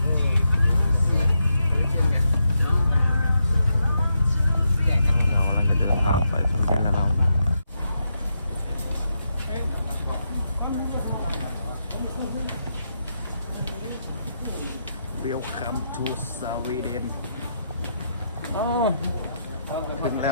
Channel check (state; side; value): inverted; both; correlation -0.82